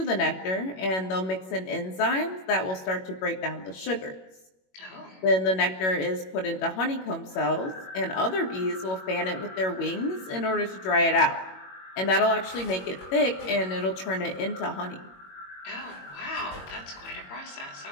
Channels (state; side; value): late; right; 21 ms